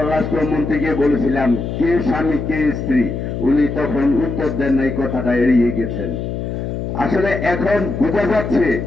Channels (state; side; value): noise; left; hum, 4 dB below the sound